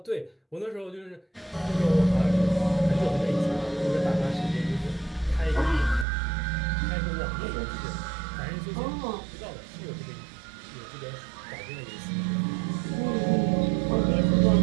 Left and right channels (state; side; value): drops out; left; at 6.1 s